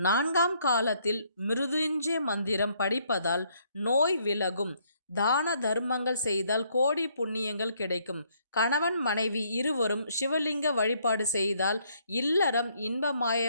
காலத்தில் மிருதுஞ்சய மந்திரம் படிப்பதால் நோய் விலகும். தான தர்மங்கள் செய்தால் கோடி புண்ணியங்கள் கிடைக்கும். கணவன் மனைவி இருவரும் சிவலிங்க வழிபாடு செய்தால் இல்லறம்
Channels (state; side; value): inverted; both; correlation -0.68